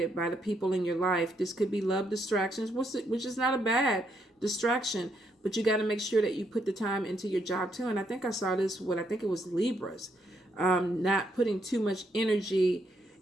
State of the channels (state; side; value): normal; both; correlation 0.75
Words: by the people in your life. This could be love distractions, which is not a bad distraction, but you got to make sure that you put the time into your job too. And I think I saw this I think it was Libras, not putting too much energy